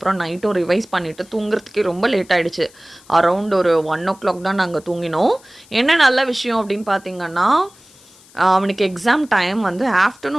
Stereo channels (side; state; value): left; noise; hiss, 26 dB below the sound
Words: நைட்டும் ரிவைஸ் பண்ணிவிட்டு தூங்குறதுக்கே ரொம்ப லேட் ஆகிடுச்சு. அரவுண்ட் ஒரு 1 o'clock தான் நாங்கள் தூங்கினோம். என்ன நல்ல விஷயம் அப்படின்னு பார்த்தீங்கன்னா, அவனுக்கு எக்ஸாம் டைம் வந்து